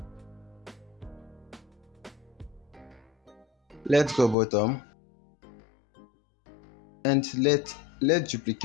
Let's go bottom and let's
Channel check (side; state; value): right; drops out; at 4.4 s